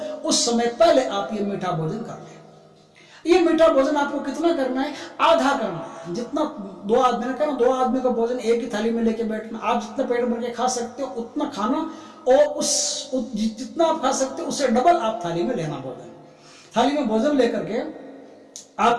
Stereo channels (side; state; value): both; identical; correlation 1.00